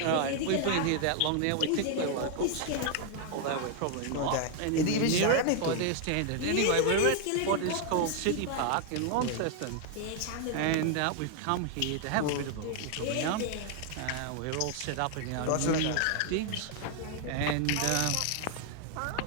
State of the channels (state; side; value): different; both; correlation 0.00